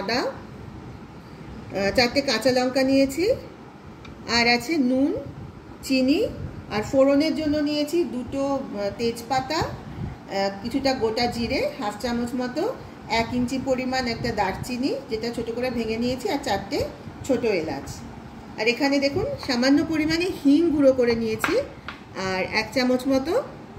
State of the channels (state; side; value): identical; both; correlation 1.00